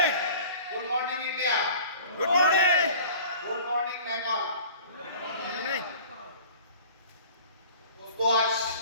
Good morning, India. Good morning. Good morning, Nepal. Good morning. दोस्तों, आज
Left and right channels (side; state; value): both; inverted; correlation -0.44